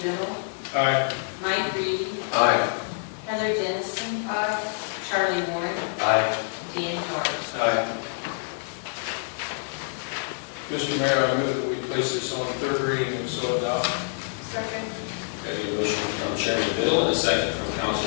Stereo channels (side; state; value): right; silent; digital silence